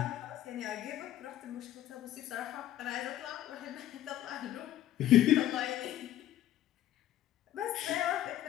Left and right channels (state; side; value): quieter; right; 12.8 dB